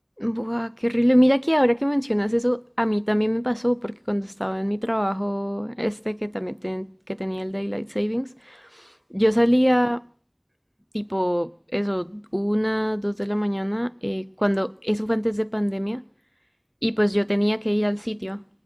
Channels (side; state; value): both; identical; correlation 1.00